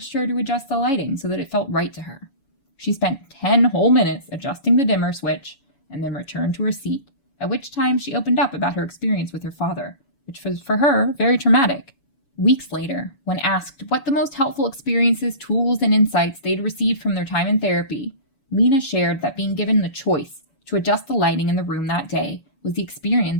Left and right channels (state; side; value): late; right; 7.2 ms